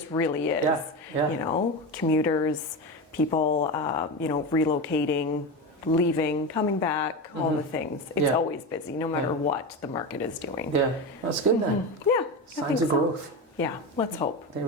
really is. Commuters, people, relocating, leaving, coming back, all the things. It's always busy, no matter what the market is doing. Yeah, that's good then. Yeah, signs of growth. Yeah, let's hope. There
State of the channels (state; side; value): normal; both; correlation 0.21